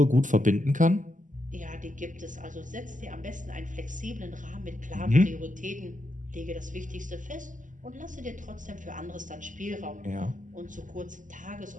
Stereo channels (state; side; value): late; left; 0.37 ms